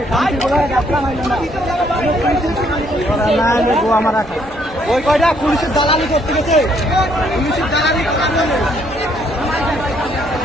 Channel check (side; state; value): both; normal; correlation 0.68